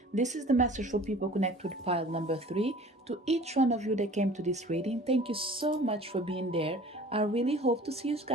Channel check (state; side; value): normal; both; correlation 0.45